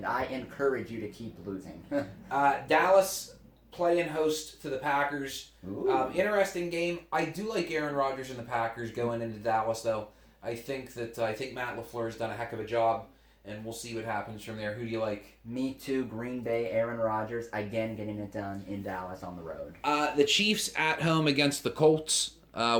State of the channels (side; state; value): both; identical; correlation 1.00